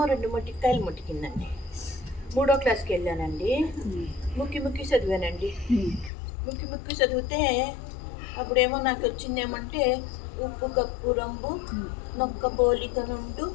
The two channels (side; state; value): right; drops out; at 6.1 s